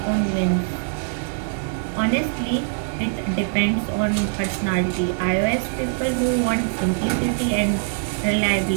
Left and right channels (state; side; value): silent; left; 64 dB below the other